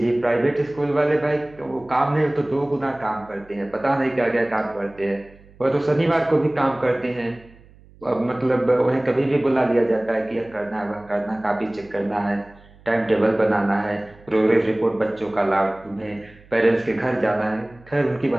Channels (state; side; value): noise; right; hum, 25 dB below the sound